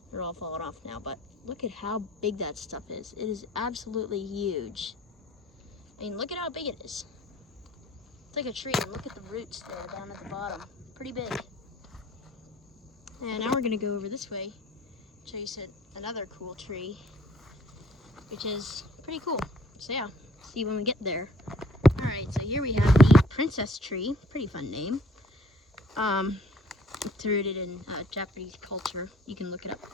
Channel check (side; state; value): both; normal; correlation 0.57